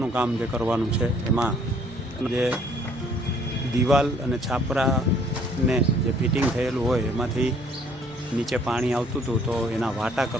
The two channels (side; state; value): both; normal; correlation 0.60